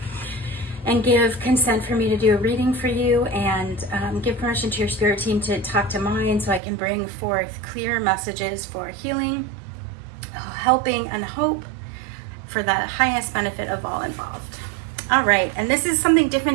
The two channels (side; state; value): left; drops out; at 6.6 s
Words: and give consent for me to do a reading for you, and give permission to your spirit team to talk to mine so I can bring forth clear messages for healing, helping, and hope for the highest benefit of all involved. All right, and this is something